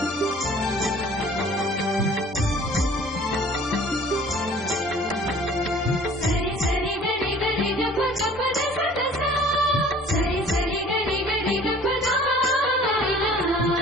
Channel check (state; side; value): normal; both; correlation 0.50